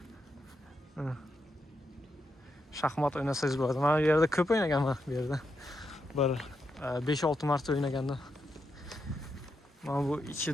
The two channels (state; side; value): normal; both; correlation 0.84